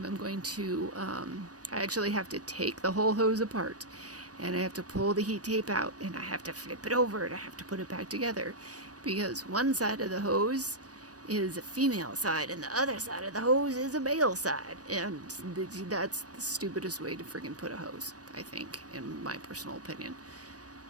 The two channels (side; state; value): left; late; 0.67 ms